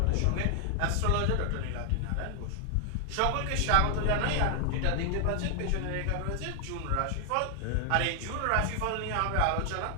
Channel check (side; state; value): both; different; correlation 0.00